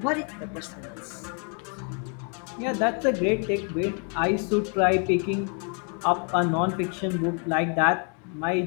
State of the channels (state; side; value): quieter; right; 39.6 dB